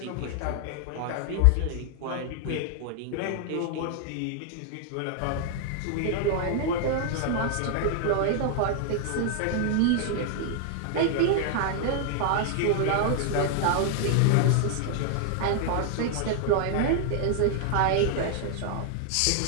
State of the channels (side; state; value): both; different; correlation 0.00